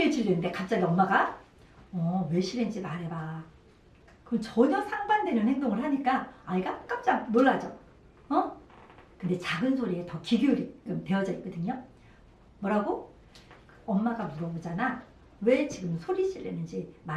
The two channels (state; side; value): identical; both; correlation 1.00